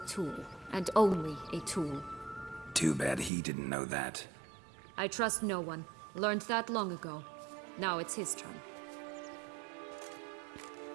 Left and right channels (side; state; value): left; drops out; at 3.3 s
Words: tool, and only a tool. Too bad he didn't know that. I trust no one. Learned that long ago. Now it's his turn.